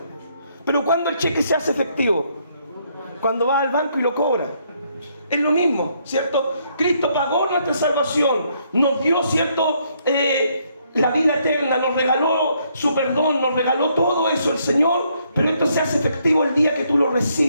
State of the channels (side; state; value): both; inverted; correlation -0.71